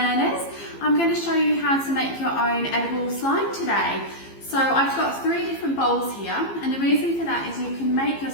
I'm going to show you how to make your own edible slime today. So I've got 3 different bowls here, and the reason for that is you can make your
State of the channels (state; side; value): late; right; 15 ms